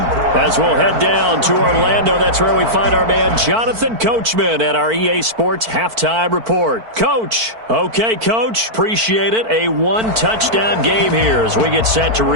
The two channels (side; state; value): left; late; 4.5 ms